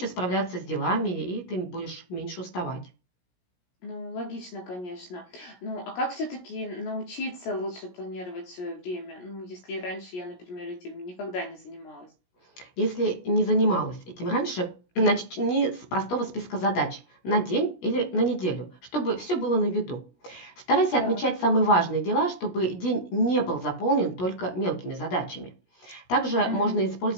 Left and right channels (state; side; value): late; right; 17 ms